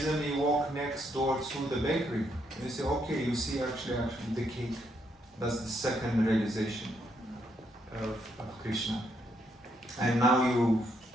you walk next door to the bakery, and you say, okay, you see actually the cake. That's the second realization of Krishna. And now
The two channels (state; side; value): normal; both; correlation 0.75